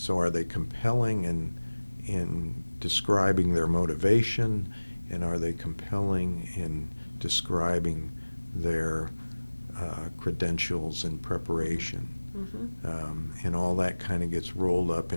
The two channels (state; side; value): inverted; both; correlation -1.00